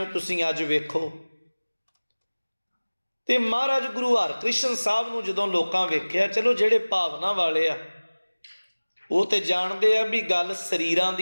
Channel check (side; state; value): both; inverted; correlation -1.00